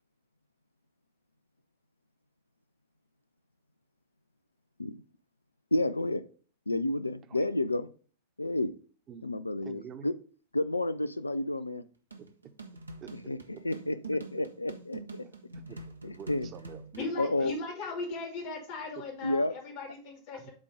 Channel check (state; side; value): inverted; both; correlation -0.82